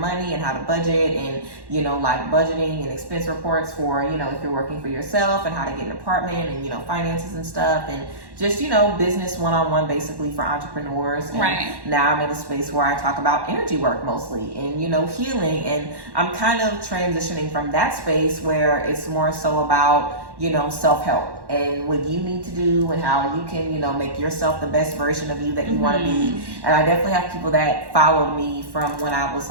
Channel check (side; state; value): left; late; 1.1 ms